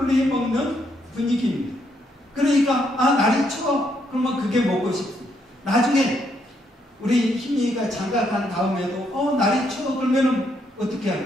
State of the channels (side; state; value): both; normal; correlation 0.74